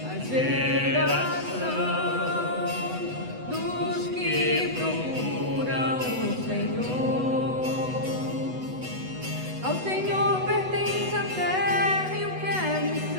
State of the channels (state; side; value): late; left; 8.0 ms